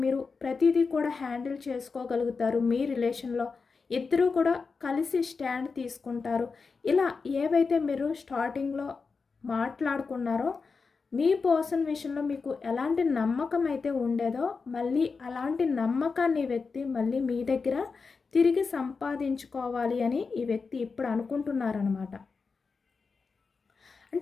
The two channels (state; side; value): quieter; right; 4.8 dB